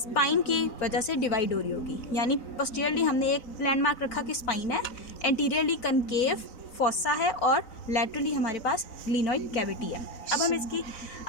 की वजह से डिवाइड हो रही होगी। यानी पोस्टीरियरली हमने एक लैंडमार्क रखा कि स्पाइन है, एंटीरियरली कनकेव फॉसा है और लैटरली हमारे पास ग्लीनॉइड कैविटी है। अब हम इसकी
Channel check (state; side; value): late; right; 4.0 ms